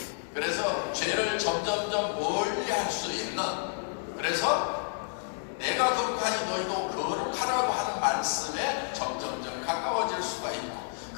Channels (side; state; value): right; silent; 58 dB below the other